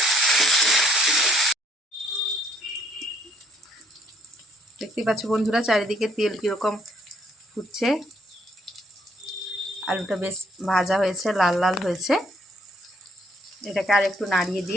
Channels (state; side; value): normal; both; correlation 0.66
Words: দেখতেই পাচ্ছ বন্ধুরা চারিদিকে তেল কীরকম ফুটছে। আলুটা বেশ ভাজা হয়েছে, লাল লাল হয়েছে। এটাকে আর একটু নাড়িয়ে